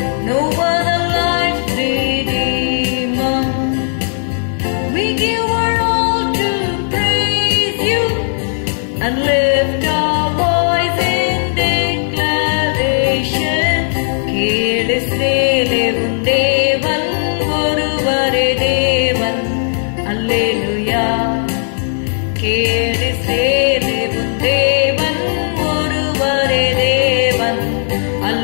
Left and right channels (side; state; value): right; silent; digital silence